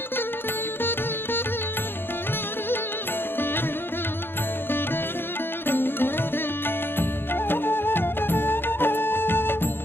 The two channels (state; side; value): late; right; 0.10 ms